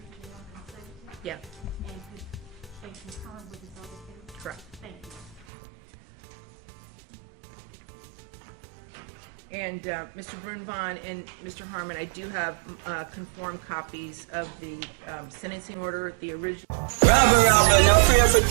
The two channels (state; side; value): drops out; left; at 5.5 s